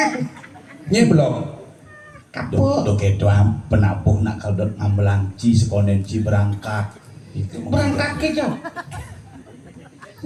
nya belum Kapok. Dok itu penabuh nak kaldot ngambelanci sekonenci berangkat. Itu Berangkat gitu.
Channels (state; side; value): identical; both; correlation 1.00